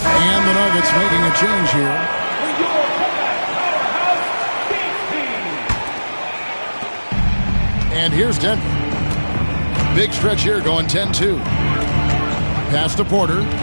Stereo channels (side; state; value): both; inverted; correlation -1.00